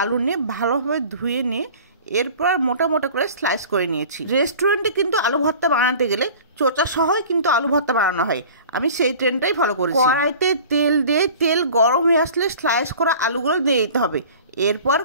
আলু নিয়ে ভালোভাবে ধুয়ে নিয়ে এরপর মোটা মোটা করে স্লাইস করে নিয়েছি। রেস্টুরেন্টে কিন্তু আলু ভর্তা বানাতে গেলে চোচা সহই কিন্তু আলু ভর্তা বানানো হয়, আমি সেই ট্রেন্ডটাই ফলো করেছি। কড়াইতে তেল দিয়ে তেল গরম হয়ে আসলে স্লাইস করা আলুগুলো দিয়ে দিতে হবে। এরপর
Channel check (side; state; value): both; inverted; correlation -0.43